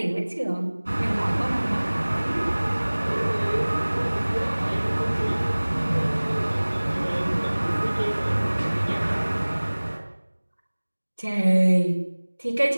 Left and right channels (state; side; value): inverted; both; correlation -1.00